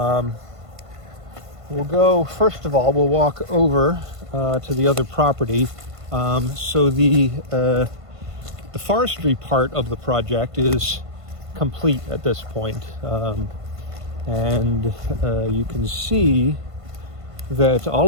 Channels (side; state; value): left; late; 1.5 ms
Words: go, first of all, we'll walk over to the other property. So the forestry part of the project is complete at this point. And you can see that all